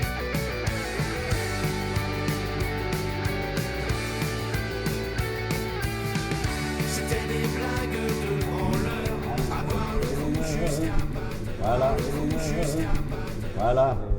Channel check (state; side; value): identical; both; correlation 1.00